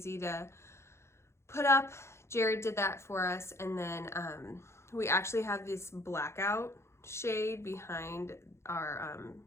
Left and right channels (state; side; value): late; right; 0.13 ms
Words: to put up. Jared did that for us. And then we actually have this blackout shade behind our